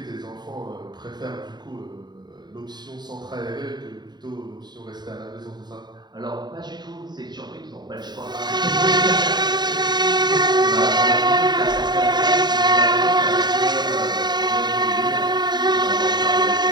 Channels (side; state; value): left; late; 0.21 ms